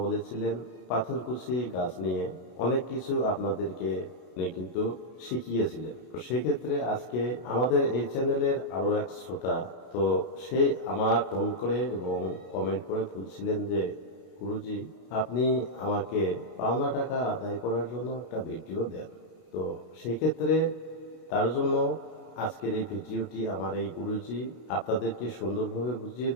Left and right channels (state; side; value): late; right; 32 ms